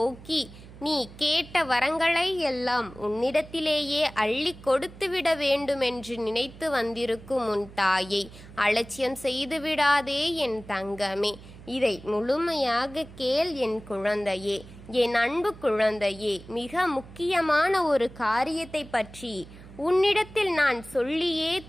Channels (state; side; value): noise; right; hum, 18 dB below the sound